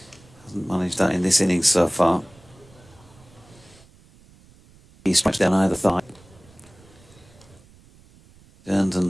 Hasn't managed that in this innings so far. He strikes down either thigh. Turns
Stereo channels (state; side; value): noise; right; rumble, 26 dB below the sound